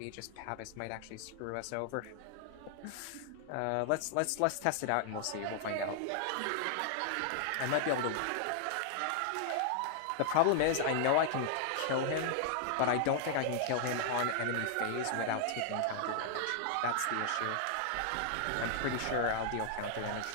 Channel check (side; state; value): both; different; correlation 0.00